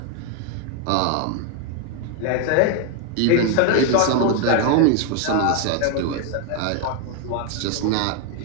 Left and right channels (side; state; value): both; different; correlation 0.01